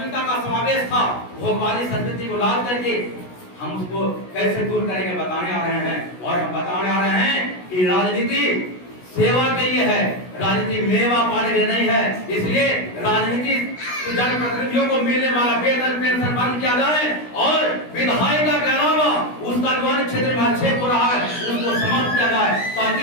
का समावेश था, भोगवादी संस्कृति को लाद करके हम उसको कैसे दूर करेंगे बताने आ रहे हैं। और हम बताने आ रहे हैं कि राजनीति सेवा के लिए है, राजनीति मेवा पाने के लिए नहीं है। इसलिए राजनीति जनप्रतिनिधियों को मिलने वाला वेतन पेंशन बंद किया जाए और विधायिका के अलावा उसका जो क्षेत्र में हस्तक्षेप हो रहा है उसको समाप्त किया जाए,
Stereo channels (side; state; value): right; late; 16 ms